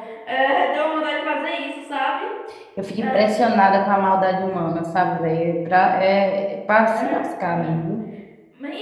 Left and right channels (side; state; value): both; identical; correlation 1.00